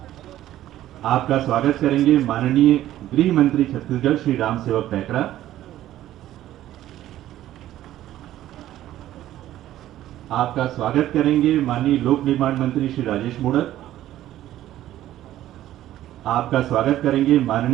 आपका स्वागत करेंगे माननीय गृह मंत्री छत्तीसगढ़ श्री राम सेवक पैकरा। आपका स्वागत करेंगे माननीय लोक निर्माण मंत्री श्री राजेश मूणत। आपका स्वागत करेंगे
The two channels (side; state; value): left; quieter; 13.4 dB